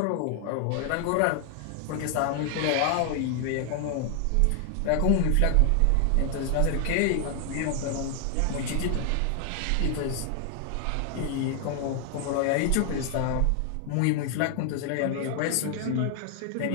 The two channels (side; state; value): both; different; correlation 0.00